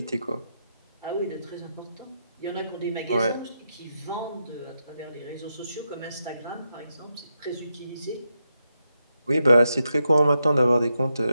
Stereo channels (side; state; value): both; inverted; correlation -0.85